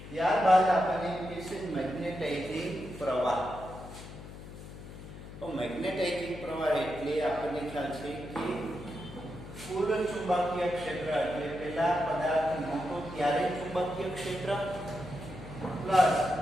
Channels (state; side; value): noise; left; hum, 13 dB below the sound